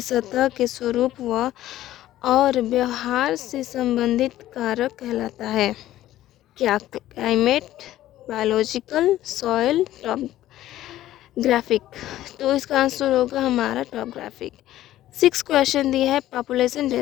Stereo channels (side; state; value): right; quieter; 14.0 dB